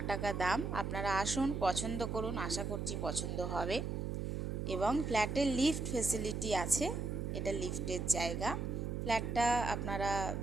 টাকা দাম। আপনারা আসুন, পছন্দ করুন, আশা করছি পছন্দ হবে। এবং ফ্ল্যাটের লিফট ফেসিলিটি আছে, এটা লিফটের জায়গা। ফ্ল্যাটটা আপনারা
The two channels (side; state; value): right; noise; hum, 2 dB below the sound